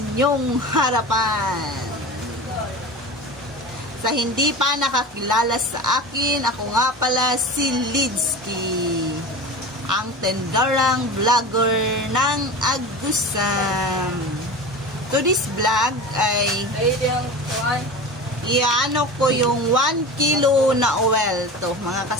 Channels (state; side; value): normal; both; correlation 0.31